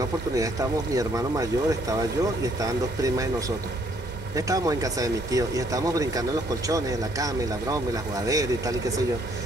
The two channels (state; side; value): normal; both; correlation 0.66